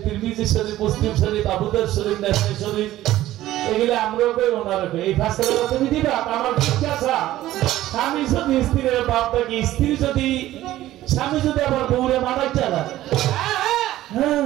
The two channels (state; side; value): quieter; left; 14.8 dB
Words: তিরমিজি শরীফ মুসলিম শরীফ আবু দাউদ শরীফ নাসাই শরীফ এগুলা আমরাও কই ওনারা কই এই ফায়সালাটা তুমি দিবা আমার জিজ্ঞাসা স্বামী যদি স্ত্রীর বাপ থাকে স্ত্রী যদি স্বামী যদি আবার বউরে মারাই চালায়